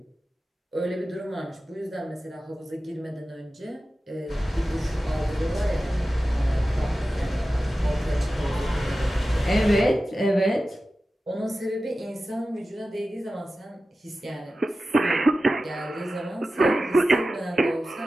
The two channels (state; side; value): normal; both; correlation 0.94